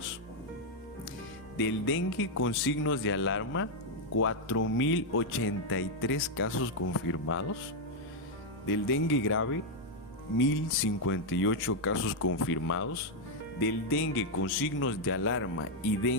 Del dengue con signos de alarma, 4.083 casos confirmados. Del dengue grave, 1.058 casos confirmados. Del dengue con signos de alarma y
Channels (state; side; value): normal; both; correlation 0.00